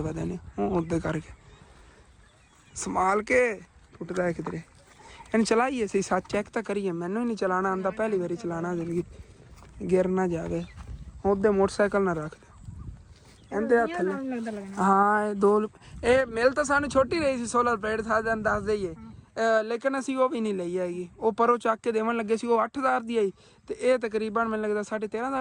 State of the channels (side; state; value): both; identical; correlation 1.00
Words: ਵਧੇ ਨੇ, ਉਹ ਉਹਦੇ ਕਰਕੇ ਸੰਭਾਲ ਕੇ ਟੁੱਟਦਾ ਹੈ ਕਿਧਰੇ। ਇਹਨੂੰ ਚਲਾਈਏ ਅਸੀਂ ਸੱਚ ਚੈੱਕ ਤਾਂ ਕਰੀਏ, ਮੈਨੂੰ ਹੀ ਨਹੀਂ ਚਲਾਉਣਾ ਆਉਂਦਾ, ਪਹਿਲੀ ਵਾਰੀ ਚਲਾਉਣਾ ਜ਼ਿੰਦਗੀ, ਗਿਰ ਨਾ ਜਾਵੇ। ਉਹਦੇ ਮੋਟਰਸਾਈਕਲ ਨਾ ਰੱਖ ਦਿਓ ਇਹਦੇ ਹੱਥ ਥੱਲੇ। ਹਾਂ ਇਹ ਮਿਲ ਤਾਂ ਸਾਨੂੰ ਛੋਟੀ ਰਹੀ ਸੀ ਸੋਲਰ ਪਲੇਟ, ਸਾਨੂੰ ਦੱਸ ਦਈਏ, ਲੇਕਿਨ ਅਸੀਂ ਉਹ ਵੀ ਨਹੀਂ ਲਈ ਹੈਗੀ। ਉਹ ਪਰੋਂ ਚੱਕ ਕੇ ਦੇਵਣ ਲੱਗੇ ਸੀ, ਉਹ 8000 ਦੀ ਆਈ, ਤੇ ਇਹ ਤਕਰੀਬਨ ਮੈਨੂੰ ਲੱਗਦਾ